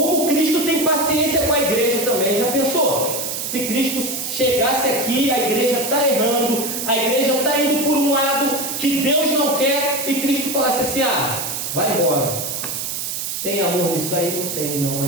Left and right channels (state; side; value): noise; right; hiss, 4 dB below the sound